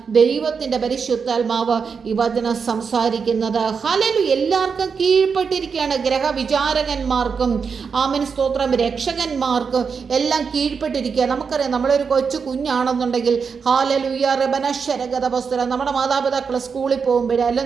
ദൈവത്തിൻ്റെ പരിശുദ്ധാത്മാവ് ഈ വചനം സംസാരിക്കുന്നത്. ഹല്ലേലൂയ. എല്ലാവർക്കും കീഴ്പ്പെട്ടിരിക്കുകയാണ്. ഗ്രഹവിചാരകന്മാർക്കും ആമേൻ സ്തോത്രം രക്ഷകന്മാർക്കും എല്ലാം കീഴ്പ്പെട്ടിരിക്കുക. നമുക്കറിയാം, നമ്മളൊരു കൊച്ചു കുഞ്ഞാണെന്നുണ്ടെങ്കിൽ ഹല്ലേലൂയ റബനശ്വരഗതവസ്തുര നമ്മുടെ മാതാപിതാക്കൾ സ്കൂളിൽ പോകുമ്പോഴേ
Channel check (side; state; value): left; quieter; 5.8 dB